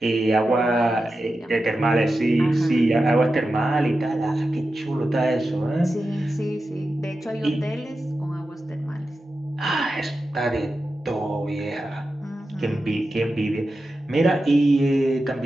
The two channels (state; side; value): normal; both; correlation 0.91